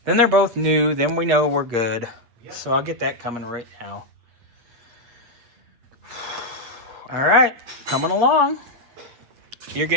Then they're both new. Then we know we're good. Yep. So I'll get that coming right now. All right, coming along. You're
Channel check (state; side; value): late; left; 8.5 ms